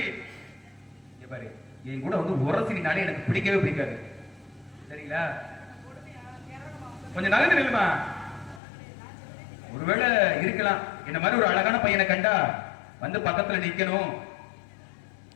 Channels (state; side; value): drops out; right; at 8.6 s